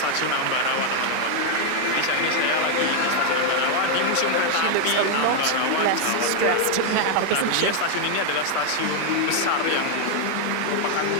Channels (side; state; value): both; different; correlation 0.00